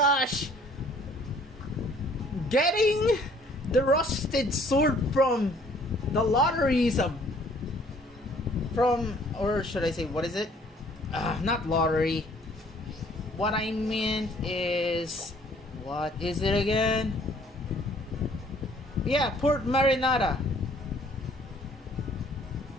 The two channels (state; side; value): normal; both; correlation 0.58